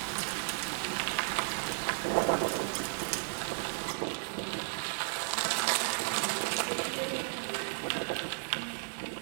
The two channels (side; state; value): left; silent; digital silence